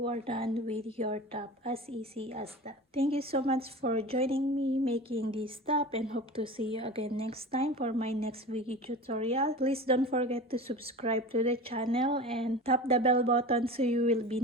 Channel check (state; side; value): normal; both; correlation 0.33